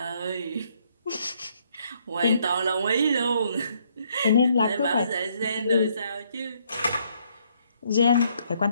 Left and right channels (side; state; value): both; inverted; correlation -0.70